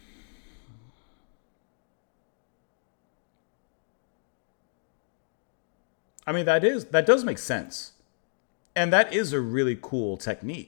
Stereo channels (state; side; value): silent; right; digital silence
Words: I mean, that does make sense. And that is a really cool